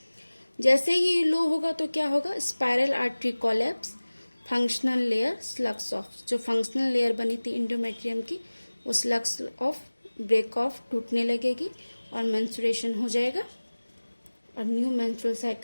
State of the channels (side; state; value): both; inverted; correlation -1.00